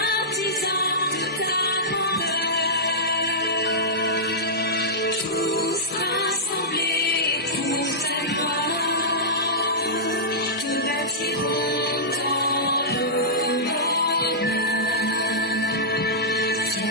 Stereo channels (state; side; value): normal; both; correlation -0.14